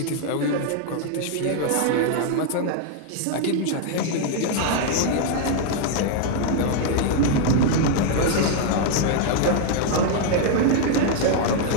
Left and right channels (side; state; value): both; different; correlation 0.00